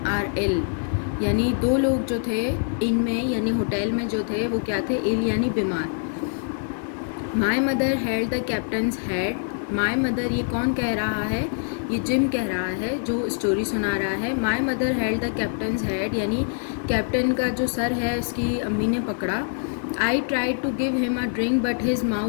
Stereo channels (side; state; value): right; silent; digital silence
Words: are ill, यानी दो लोग जो थे इन में यानी होटल में जो थे वो क्या थे, इल यानी बीमार। माई mother held the captain's head. My mother ये कौन कह रहा है, ये जिम कह रहा है जो स्टोरी सुना रहा है। My mother held the captain's head यानी कैप्टन का जो सर है उसकी अम्मी ने पकड़ा। I tried to give him a drink but his